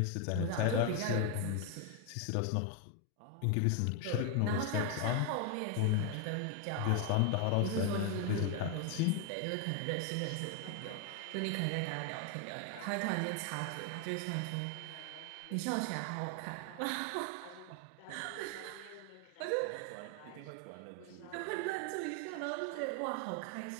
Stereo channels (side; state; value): both; different; correlation 0.01